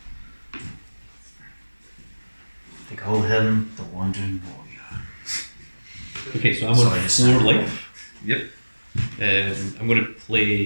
They call him the Wandering Warrior. Okay, so I'm So on I 4 decide- life. Yep. I'm going to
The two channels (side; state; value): both; inverted; correlation -1.00